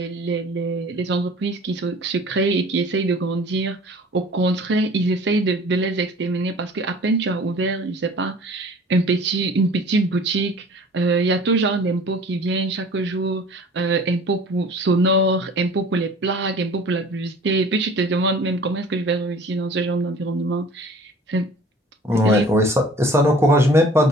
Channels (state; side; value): normal; both; correlation 0.46